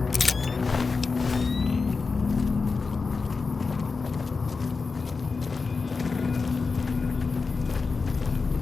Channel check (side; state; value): right; quieter; 4.4 dB